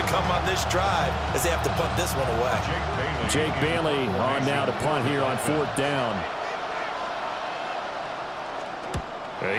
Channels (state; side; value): identical; both; correlation 1.00